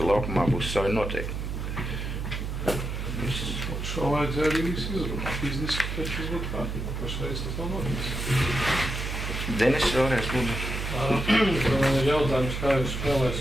laukumā būs savi noteikumi. Šo vajadzēja arī visu izrunāt, izdiskutēt, šis būtu kārtībā. Pašreiz tas nav noticis. Denis, vēlreiz lūdzu. Jautājums, kā jūs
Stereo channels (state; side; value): noise; right; hum, 4 dB below the sound